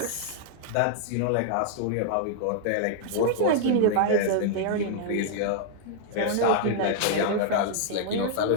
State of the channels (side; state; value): both; different; correlation -0.01